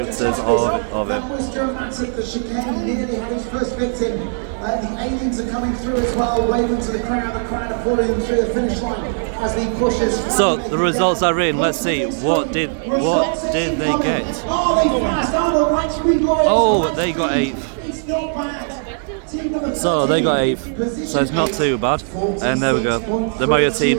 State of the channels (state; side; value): silent; left; digital silence